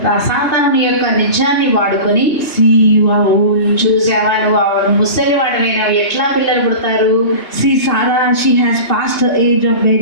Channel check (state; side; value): late; right; 2.7 ms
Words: సాతాను యొక్క నిజాన్ని వాడుకొని, See you are old. చూసావా నువ్వు ముసలి వాడివైనావు, ఎట్లా పిల్లలు పుడతారు? See Sarah, she has passed her age of